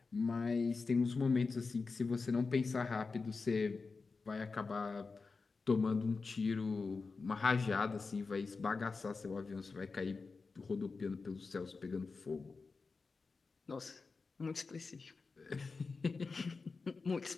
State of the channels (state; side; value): quieter; right; 4.3 dB